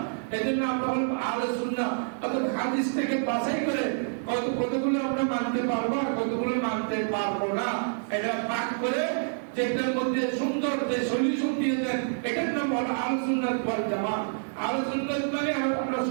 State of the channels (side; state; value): left; silent; 60 dB below the other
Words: এই জন্য আমরা হল আহলে সুন্নাহ, অর্থাৎ হাদিস থেকে বাছাই করে কতগুলো আমরা মানতে পারবো আর কতগুলো মানতে পারবো না, এটা ভাগ করে যেটার মধ্যে সুন্দর যে সলিউশন দিয়েছেন, এটার নাম হলো আহলে সুন্নাত ওয়াল জামাত। আহলে সুন্নাত মানে আমরা